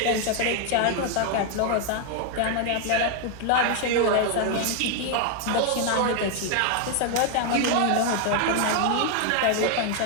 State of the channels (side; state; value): both; different; correlation 0.00